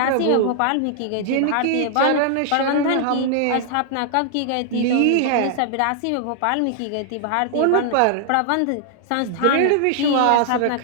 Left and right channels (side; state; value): both; different; correlation 0.00